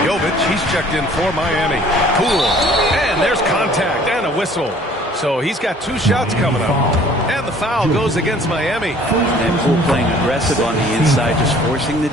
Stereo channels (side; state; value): both; normal; correlation 0.54